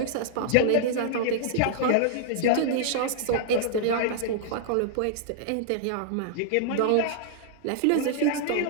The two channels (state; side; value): different; both; correlation -0.01